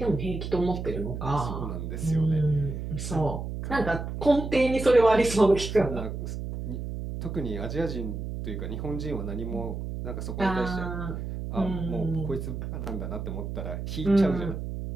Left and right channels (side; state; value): right; noise; hum, 6 dB below the sound